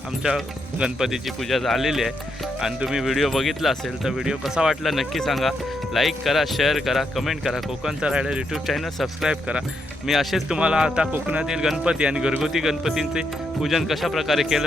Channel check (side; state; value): both; normal; correlation 0.80